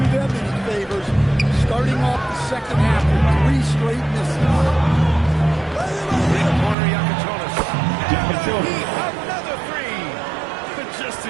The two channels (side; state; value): left; drops out; at 6.8 s